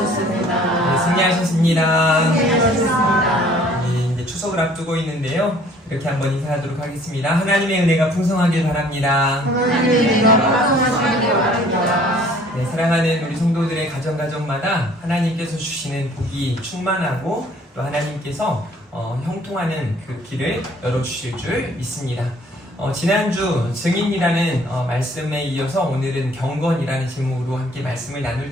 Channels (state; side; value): normal; both; correlation 0.56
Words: 네, 승리하셨습니다. 잘하셨습니다. 네, 이제 추석을 앞두고 있는데요. 이렇게 한번 인사하도록 하겠습니다. 하나님의 은혜가 풍성하길 바랍니다. 하나님의 은혜가 풍성하시길 바랍니다. 네, 사랑하는 우리 성도들의 가정마다 하나님께서 주시는 복이 충만하고 또 하나님께서 형통하는 그 길을 열어주실 줄 믿습니다. 지난주 증인이라는 말씀에 이어서 오늘은 경건이라는 제목으로 함께 말씀을